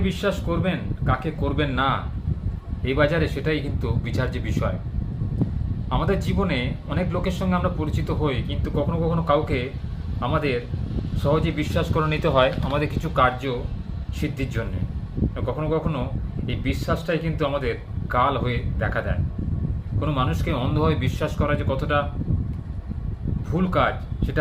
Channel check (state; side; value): identical; both; correlation 1.00